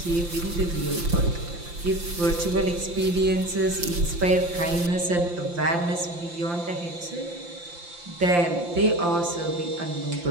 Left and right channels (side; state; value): left; late; 5.8 ms